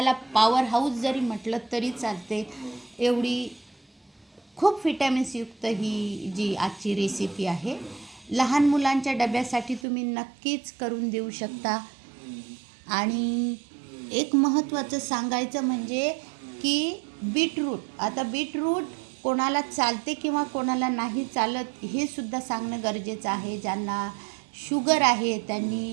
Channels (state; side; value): drops out; left; at 9.9 s